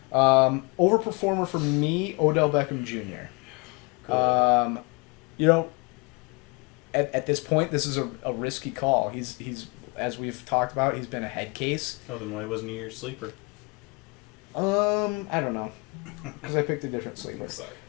Overperformer for me, Odell Beckham Jr. Good. At this point, this is a risky call. He's as we've talked about, he's been a head case. Oh, then why wasn't he your sleeper? I don't know, because I picked a different sleeper.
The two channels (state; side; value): quieter; right; 29.3 dB